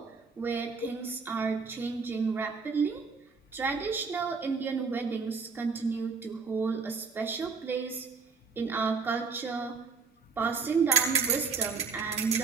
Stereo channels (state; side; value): quieter; left; 5.0 dB